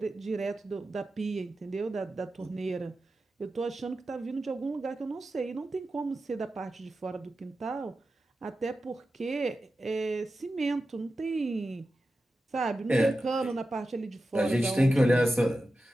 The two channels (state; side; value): normal; both; correlation 0.92